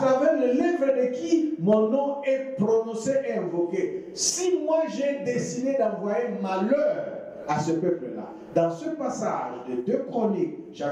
travers les lèvres de qui mon nom est prononcé et invoqué. Si moi j'ai décidé d'envoyer malheur à ce peuple-là, dans ce passage de 2 Chroniques,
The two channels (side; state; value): both; identical; correlation 1.00